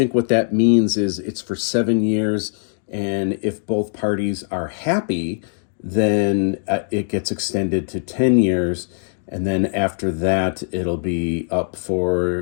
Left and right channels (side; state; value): right; silent; 65 dB below the other